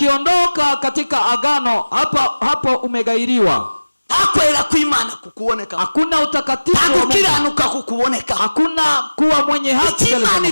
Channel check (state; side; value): inverted; both; correlation -1.00